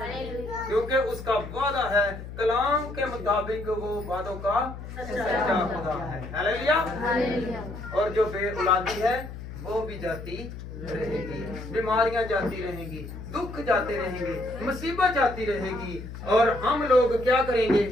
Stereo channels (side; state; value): left; noise; hum, 11 dB below the sound